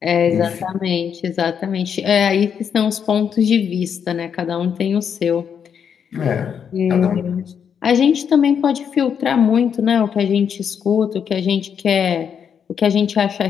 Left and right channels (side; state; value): right; quieter; 7.6 dB